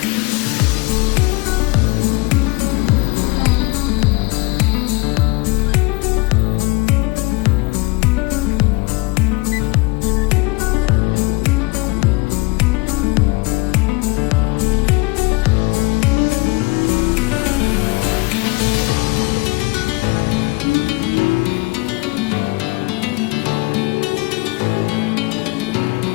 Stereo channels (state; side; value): quieter; right; 24.9 dB